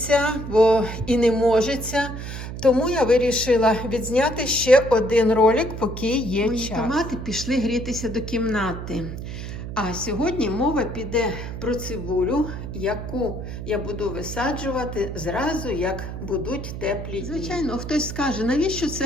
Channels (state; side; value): noise; right; hum, 8 dB below the sound